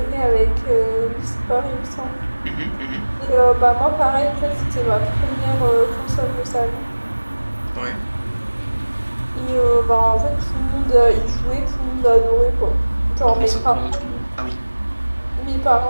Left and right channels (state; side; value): inverted; both; correlation -1.00